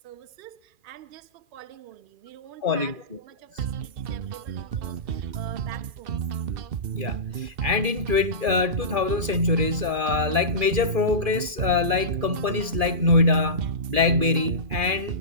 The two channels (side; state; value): left; late; 2.4 ms